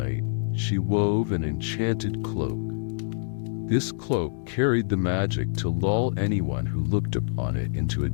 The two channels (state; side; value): silent; right; digital silence